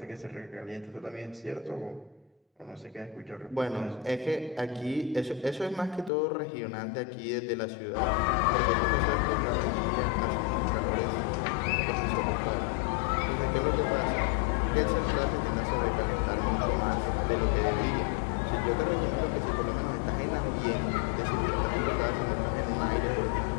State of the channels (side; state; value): right; drops out; at 6.1 s